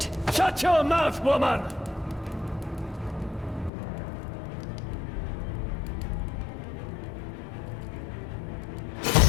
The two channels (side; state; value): right; drops out; at 3.7 s